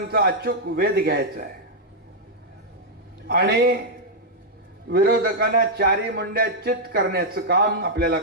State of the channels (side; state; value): both; normal; correlation -0.05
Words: अचूक वेध घ्यायचा आहे आणि विरोधकांना चारी मुंड्या चित करण्याचं काम आपल्याला